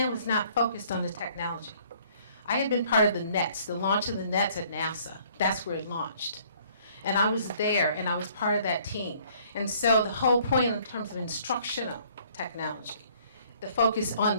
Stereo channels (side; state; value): both; inverted; correlation -0.60